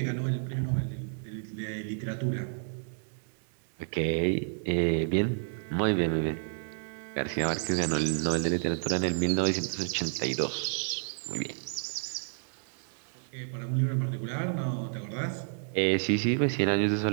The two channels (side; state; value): left; silent; 57 dB below the other